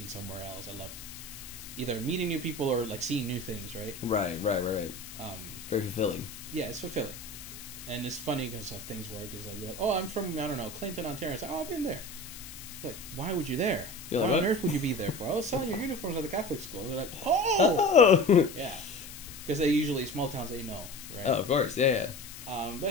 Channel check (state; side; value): noise; left; hiss, 13 dB below the sound